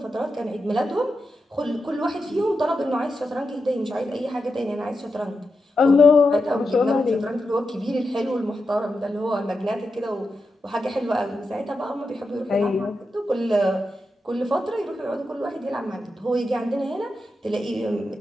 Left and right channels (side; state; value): both; normal; correlation 0.88